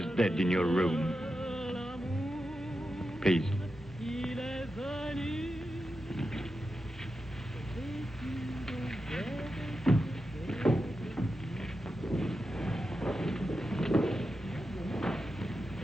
dead in your room. Please.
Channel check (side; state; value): both; normal; correlation 0.89